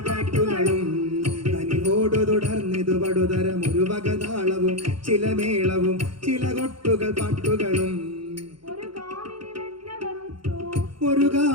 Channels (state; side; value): late; left; 0.73 ms